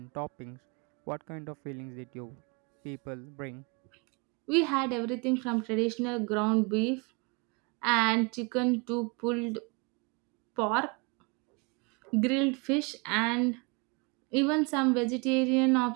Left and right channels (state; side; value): quieter; left; 30.6 dB